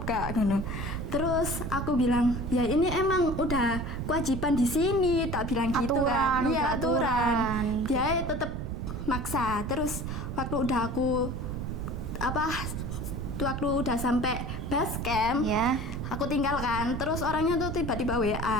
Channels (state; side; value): noise; right; rumble, 4 dB below the sound